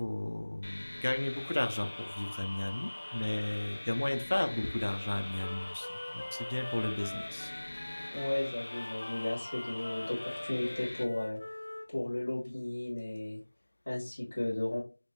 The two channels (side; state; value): both; inverted; correlation -1.00